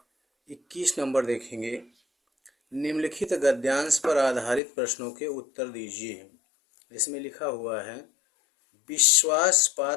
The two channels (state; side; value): drops out; right; at 4.6 s